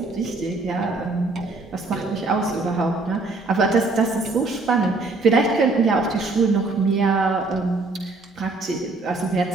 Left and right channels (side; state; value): left; quieter; 3.4 dB